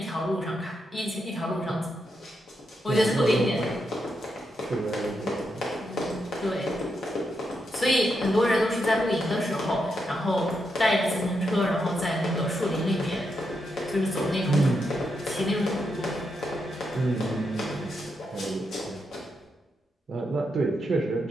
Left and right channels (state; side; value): normal; both; correlation 0.83